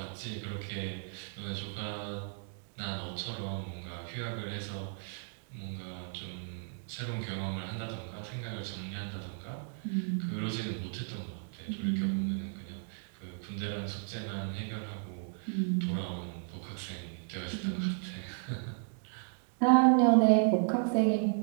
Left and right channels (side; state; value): left; silent; 55 dB below the other